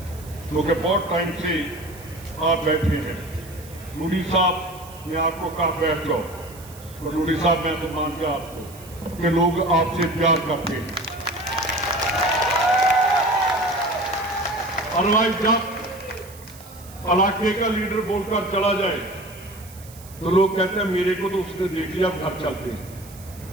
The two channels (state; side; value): noise; right; hiss, 20 dB below the sound